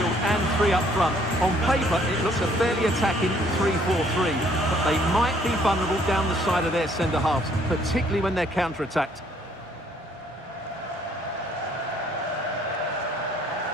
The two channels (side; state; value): both; normal; correlation 0.63